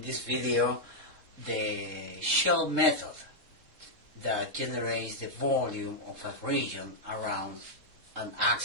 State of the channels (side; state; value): left; late; 3.7 ms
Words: this video the shell method that generates the volume of a region around an